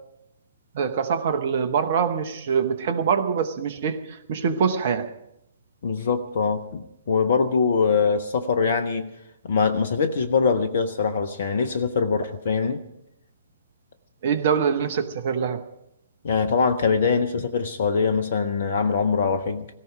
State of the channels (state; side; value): inverted; both; correlation -0.58